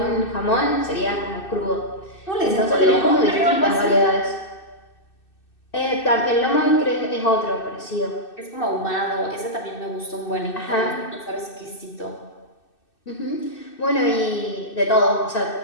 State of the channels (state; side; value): late; right; 2.6 ms